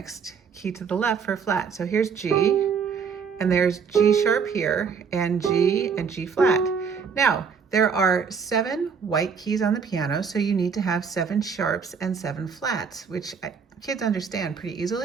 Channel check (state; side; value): quieter; left; 6.1 dB